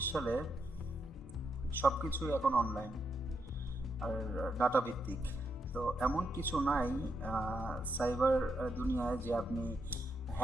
সালে সব কিছুই এখন অনলাইন আর ডাটা ভিত্তিক। তো এমন কিছু নাই সাইবার দুনিয়ায় যে আপনি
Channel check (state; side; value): normal; both; correlation 0.81